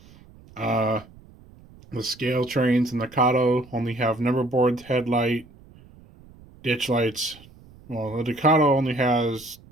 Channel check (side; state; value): right; noise; rumble, 24 dB below the sound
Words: Uh, the Scale Trains and the Kato only have number boards, headlight, ditch lights. Well, the Ducato only has